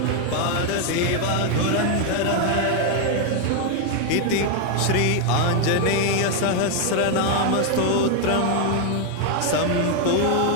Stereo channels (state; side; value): different; both; correlation 0.01